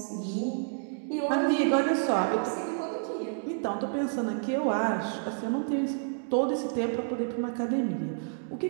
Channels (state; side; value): silent; left; digital silence